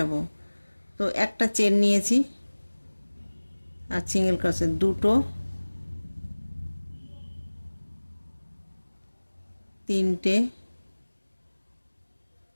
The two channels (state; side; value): inverted; both; correlation -1.00